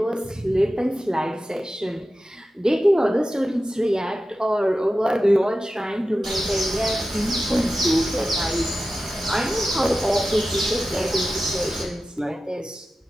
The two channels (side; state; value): both; normal; correlation 0.93